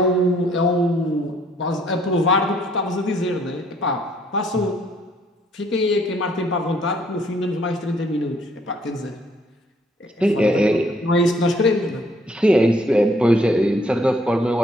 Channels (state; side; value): normal; both; correlation 0.65